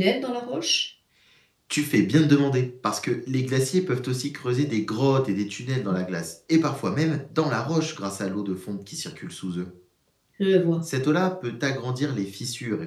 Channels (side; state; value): both; identical; correlation 1.00